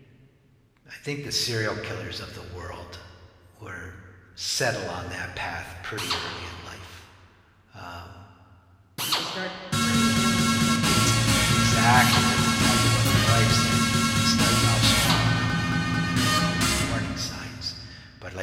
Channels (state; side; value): identical; both; correlation 1.00